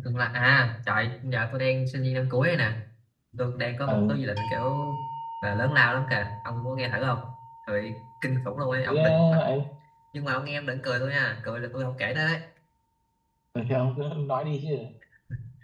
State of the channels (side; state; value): both; identical; correlation 1.00